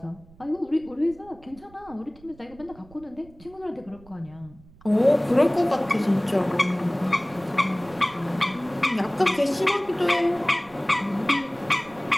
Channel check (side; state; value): right; noise; rumble, 24 dB below the sound